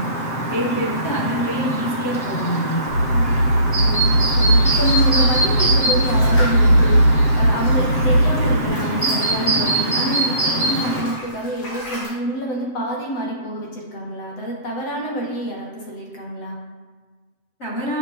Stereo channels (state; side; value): late; right; 7.8 ms